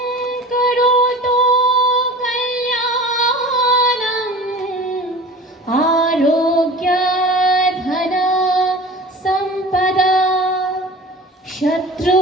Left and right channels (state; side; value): normal; both; correlation 0.39